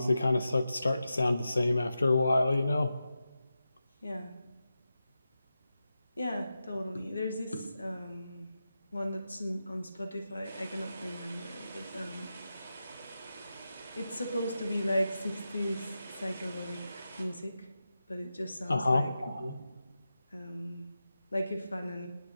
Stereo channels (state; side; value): inverted; both; correlation -0.90